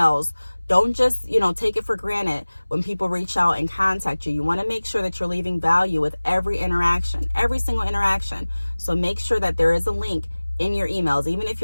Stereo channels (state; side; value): inverted; both; correlation -1.00